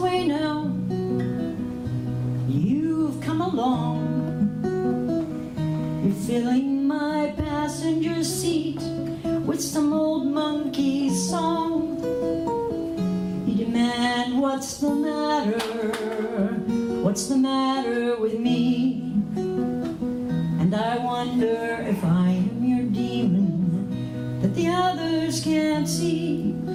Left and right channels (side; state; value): both; identical; correlation 1.00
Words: now, you've come along. You're filling my passenger seat with some old monkey song. You demand, what's the matter? What's the matter with me? And I wonder if I am your demon that the others can't see.